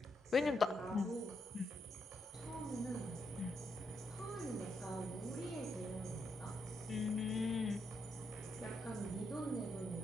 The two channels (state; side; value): normal; both; correlation 0.80